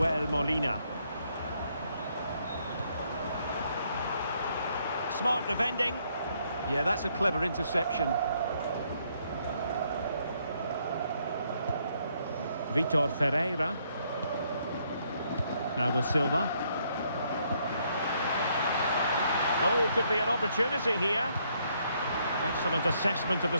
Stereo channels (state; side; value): inverted; both; correlation -0.71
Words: Molina. Smart defending. Yeah, that's a clever interception. Vitor Ferreira. Now with Silva. Oh, could be an opportunity here. Excellent assessment of the